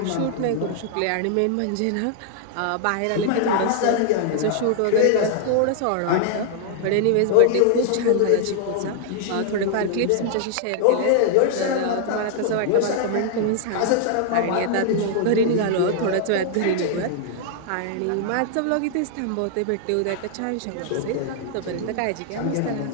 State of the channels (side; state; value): both; different; correlation -0.01